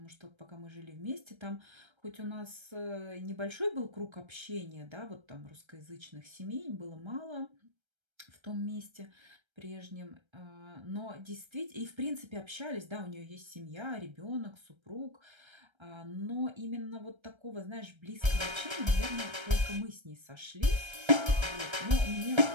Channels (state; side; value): late; left; 1.3 ms